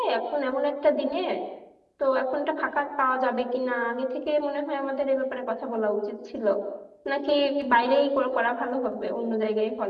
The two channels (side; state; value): both; identical; correlation 1.00